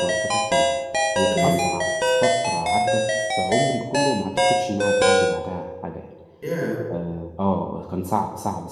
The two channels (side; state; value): both; identical; correlation 1.00